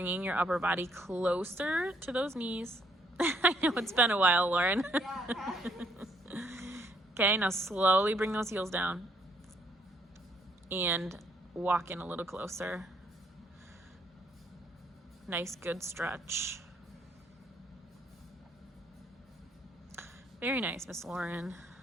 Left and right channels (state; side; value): normal; both; correlation 0.69